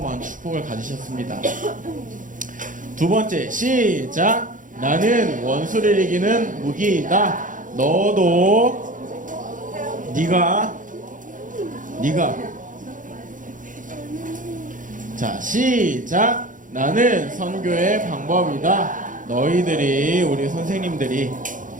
축복을 가지셨습니다. 두 번째, 시작. 나는 원수를 이기는 무기이다. 너도 네가 자, 시작. 나는 선교의 방법이다. 너희들이, 우리 선생님들이,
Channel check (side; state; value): left; late; 0.38 ms